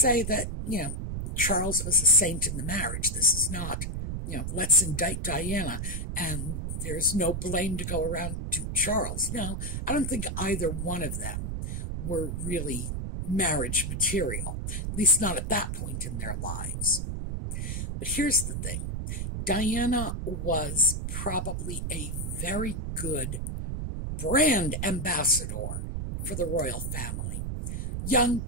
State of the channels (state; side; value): noise; right; rumble, 3 dB below the sound